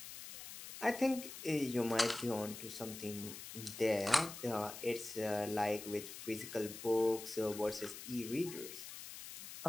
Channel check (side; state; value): left; noise; hiss, 11 dB below the sound